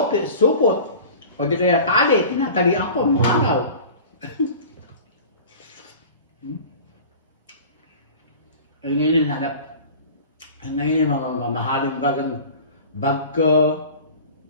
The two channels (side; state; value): both; inverted; correlation -0.40